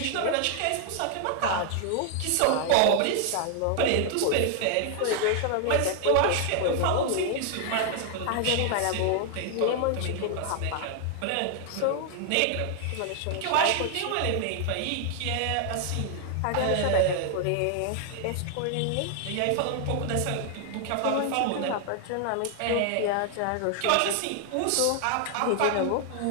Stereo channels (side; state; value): both; different; correlation 0.00